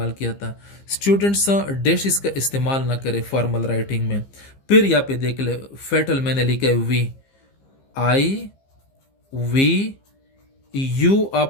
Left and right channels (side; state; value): right; late; 15 ms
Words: किया था। स्टूडेंट्स डैशिज का इस्तेमाल ना करें फॉर्मल राइटिंग में। फिर यहाँ पे देख ले, फेटल मैंने लिखा है वी, आई, वी, यू,